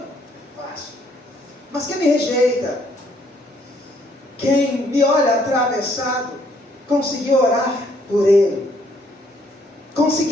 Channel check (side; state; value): both; normal; correlation 0.67